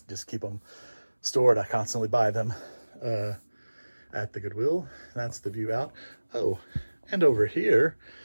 just keep them stored. I constantly buy them at the Goodwill. That's the view out. Oh, and over here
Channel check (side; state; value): both; inverted; correlation -1.00